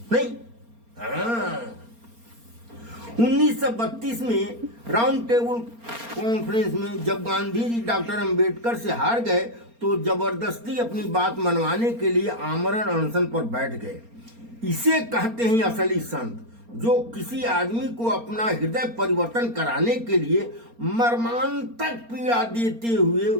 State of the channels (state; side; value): late; left; 4.3 ms